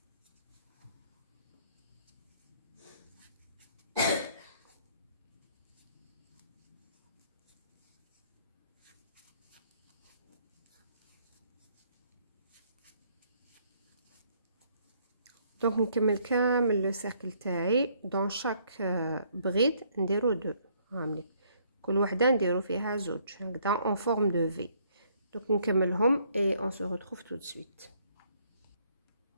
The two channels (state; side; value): inverted; both; correlation -0.66